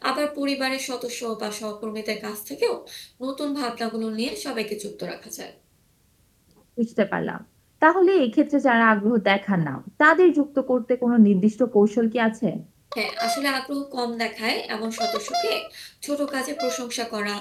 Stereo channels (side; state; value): both; identical; correlation 1.00